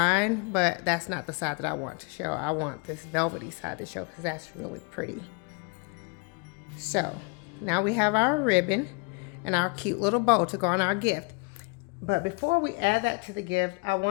but that's not the side that I want to show. I want this velvety side to show because that's really pretty. So now we have our ribbon and our cute little bow to go on our gift. But before we add that to the gift, I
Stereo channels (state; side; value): quieter; right; 33.2 dB